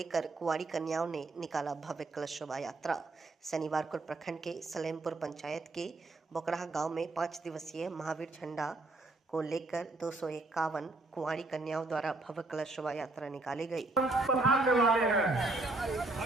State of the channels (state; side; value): quieter; left; 3.1 dB